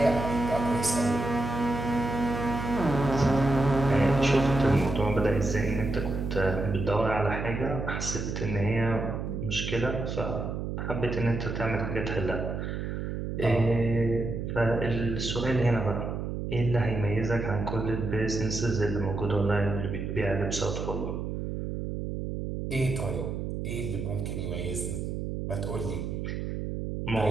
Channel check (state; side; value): noise; right; hum, 4 dB below the sound